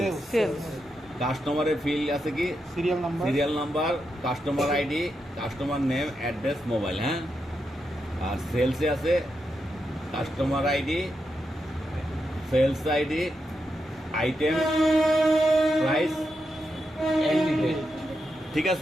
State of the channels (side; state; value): both; normal; correlation 0.85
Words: কাস্টমারের ফিল্ড আছে কি serial number, customer ID, customer name, address, mobile. হ্যাঁ, আর সেলসে আছে customer ID, sales ID, item, price, ঠিক